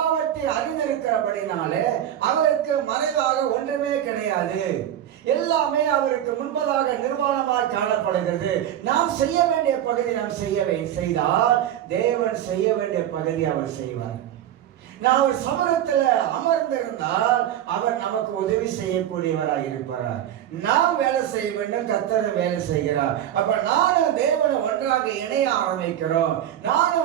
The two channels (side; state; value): left; quieter; 11.2 dB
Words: அறிந்திருக்கிறபடினாலே அவருக்கு மறைவாக ஒன்றுமே கிடையாது. எல்லாமே அவருக்கு முன்பதாக நிர்வாணமாக காணப்படுகிறது. நாம் செய்ய வேண்டிய பகுதி நாம் செய்தால் தேவன் செய்ய வேண்டிய பகுதி அவர் செய்வார். நான் ஒரு சமூகத்தில் அமர்ந்திருந்தால் அவர் நமக்கு உதவி செய்யக்கூடியவராக இருப்பார். நாம் வேலை செய்ய வேண்டும், கர்த்தர் வேலை செய்கிறார். அப்ப நானும் தேவனை ஒன்றாக இணைய ஆரம்பிக்கிறோம்.